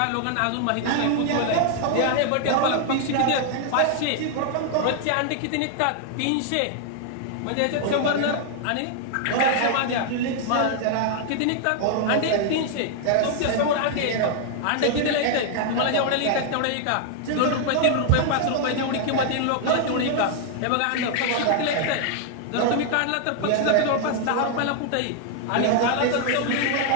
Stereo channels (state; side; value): different; both; correlation 0.00